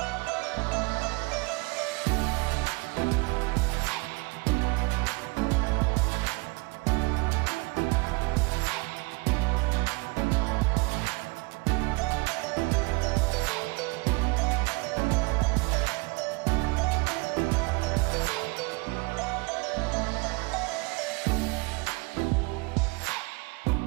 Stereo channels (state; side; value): quieter; left; 27.1 dB